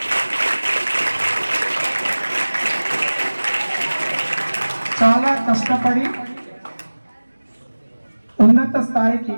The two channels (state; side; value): inverted; both; correlation -1.00